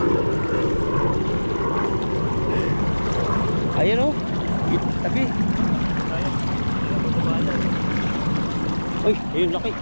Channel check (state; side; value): inverted; both; correlation -1.00